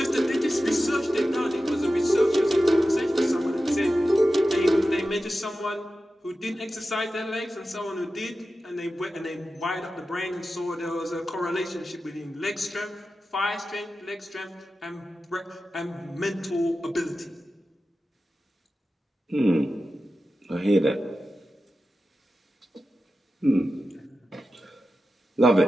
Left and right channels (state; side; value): normal; both; correlation 0.93